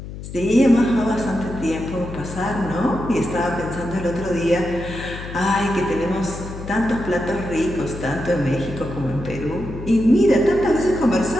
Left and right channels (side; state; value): left; noise; hum, 11 dB below the sound